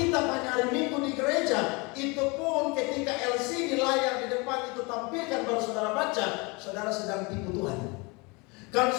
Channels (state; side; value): quieter; right; 28.0 dB